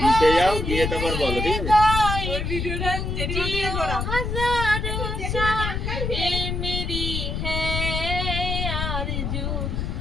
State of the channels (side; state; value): left; noise; rumble, 2 dB below the sound